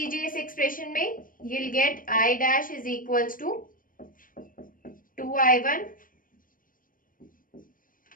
इस एक्सप्रेशन में, you will get I dash is equals to 2I1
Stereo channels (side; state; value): right; late; 0.40 ms